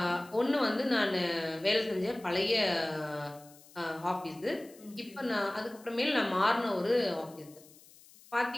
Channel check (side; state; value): left; noise; hiss, 24 dB below the sound